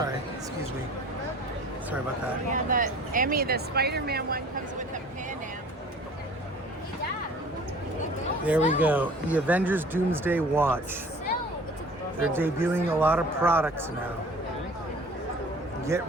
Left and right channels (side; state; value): both; normal; correlation 0.47